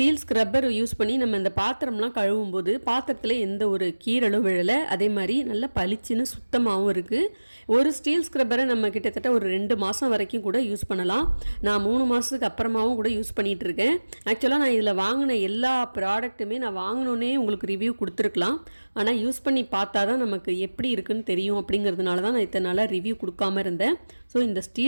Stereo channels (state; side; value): inverted; both; correlation -1.00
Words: ஸ்க்ரப்பர் யூஸ் பண்ணி நம்ம இந்த பாத்திரம்லாம் கழுவும் போது பாத்திரத்தில் எந்த ஒரு கீரலும் விழலை. அதே மாதிரி நல்லா பளிச்சுன்னு சுத்தமாகவும் இருக்குது. ஒரு ஸ்டீல் ஸ்க்ரப்பரை நம்ம கிட்டத்தட்ட ஒரு 2 மாதம் வரைக்கும் கூட யூஸ் பண்ணலாம். நான் 3 மாதத்துக்கு அப்புறமாவும் கூட யூஸ் பண்ணிகிட்டு இருக்கேன். ஆக்சுவலாக நான் இதில் வாங்கின எல்லா ப்ராடக்ட்டுமே நான் வாங்கினோன்னே உங்களுக்கு ரிவ்யூ கொடுத்துருக்கலாம். ஆனால் யூஸ் பண்ணி பார்த்தா தான் நமக்கு எப்படி இருக்குன்னு தெரியும். அப்படிங்கிறதுனால தான் நான் இத்தனை நாளாக ரிவ்யூ கொடுக்காம இருந்தேன். ஸோ இந்த